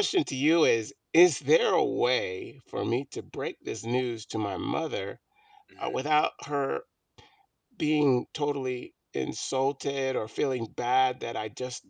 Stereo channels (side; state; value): both; identical; correlation 1.00